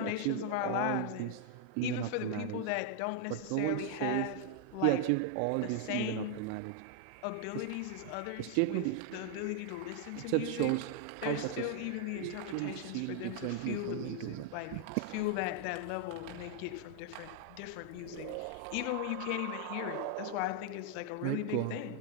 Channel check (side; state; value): both; different; correlation 0.00